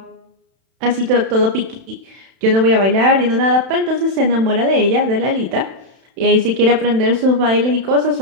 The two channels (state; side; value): late; left; 31 ms